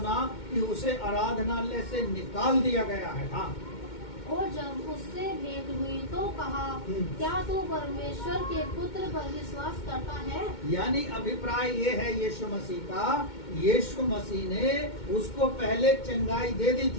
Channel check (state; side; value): late; right; 2.2 ms